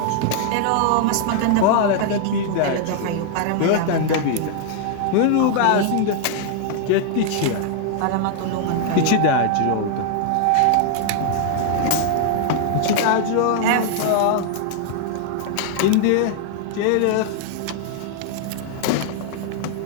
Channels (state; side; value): different; both; correlation 0.00